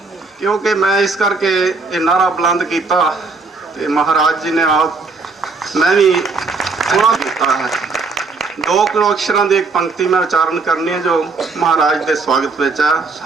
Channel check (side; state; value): left; quieter; 4.1 dB